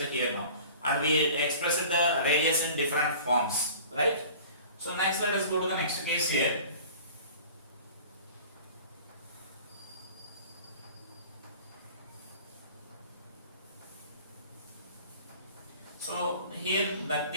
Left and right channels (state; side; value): inverted; both; correlation -0.44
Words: here now. And we expressed the radius in different forms, right? So next let us go to the next case here. So here the